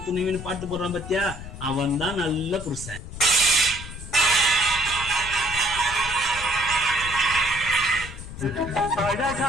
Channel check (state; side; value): noise; left; rumble, 11 dB below the sound